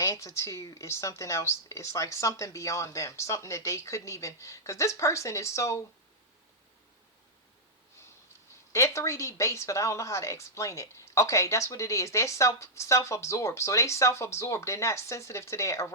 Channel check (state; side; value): normal; both; correlation -0.09